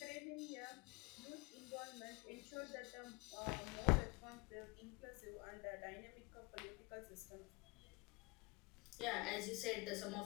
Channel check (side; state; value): right; quieter; 26.0 dB